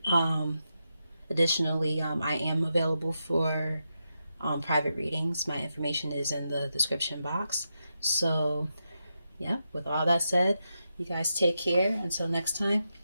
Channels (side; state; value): both; inverted; correlation -0.86